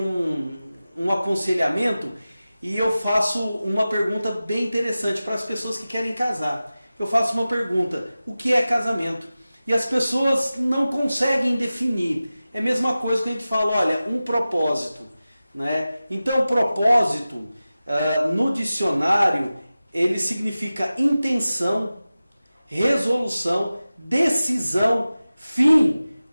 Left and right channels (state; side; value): inverted; both; correlation -0.96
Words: aconselhamento, e eu faço uma pergunta bem interessante para as pessoas que querem casar. Eu faço uma pergunta: o que é casamento? E as pessoas não conseguem definir. É a mesma coisa que a gente fala, olha, um propósito, né? Então, propósito, no dicionário, ele significa intenção, resolução, decisão, fim,